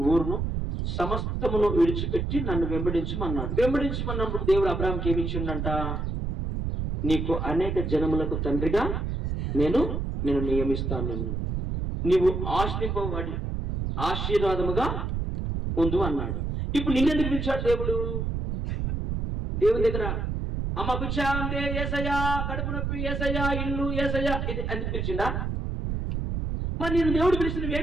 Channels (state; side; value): noise; right; rumble, 2 dB below the sound